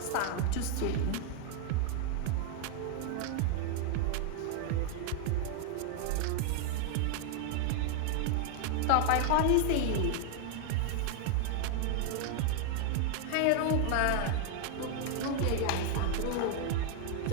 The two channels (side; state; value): both; different; correlation 0.00